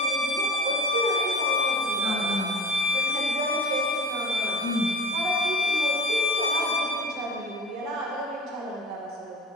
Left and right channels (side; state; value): both; normal; correlation 0.37